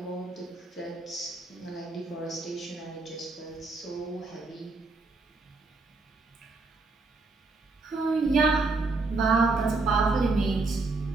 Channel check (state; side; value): quieter; left; 3.5 dB